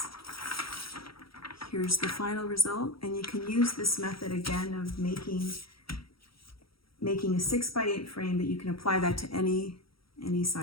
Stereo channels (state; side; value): late; right; 0.75 ms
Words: here's the final result, and you can use this method again of making a 6x8 frame, but you can apply that to any